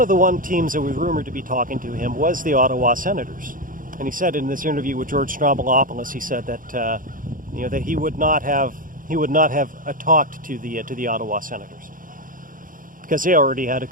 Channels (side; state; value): left; late; 0.40 ms